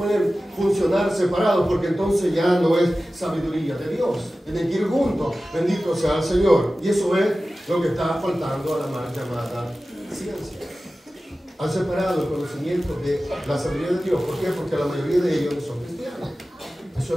funcionar separados porque entonces ya no es sabiduría de Dios. Tienen que ir juntos. Bendito sea el Señor. Y eso es lo que está faltando a la mal llamada ciencia. Han separado el conocimiento de la sabiduría de Dios. ¿Por qué? Porque la mayoría de ellos no son cristianos. Eso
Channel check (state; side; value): normal; both; correlation 0.95